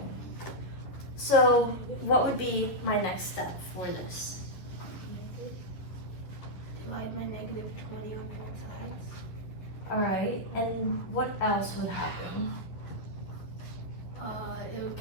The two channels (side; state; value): right; late; 11 ms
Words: So what would be my next step for this? Divide my negative 20 on both sides. All right, and what else would happen? It would